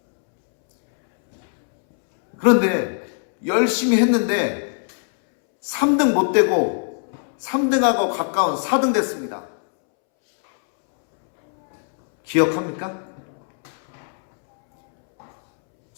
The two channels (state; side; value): silent; right; 65 dB below the other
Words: 그런데 열심히 했는데 3등 못 되고 3등하고 가까운 4등 됐습니다. 기억합니까?